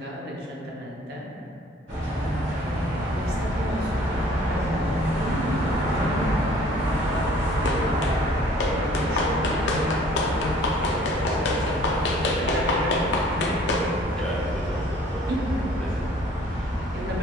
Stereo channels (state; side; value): normal; both; correlation 0.54